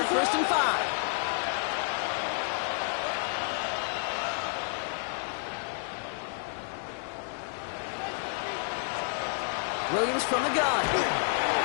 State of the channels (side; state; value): right; silent; 58 dB below the other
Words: 1st and 5. Williams from the gun.